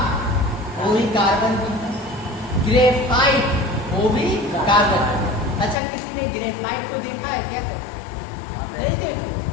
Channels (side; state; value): right; drops out; at 5.8 s